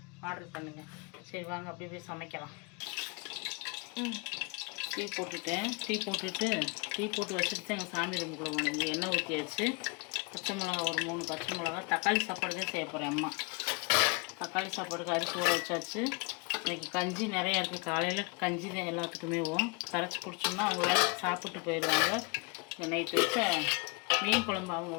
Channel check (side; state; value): right; quieter; 31.1 dB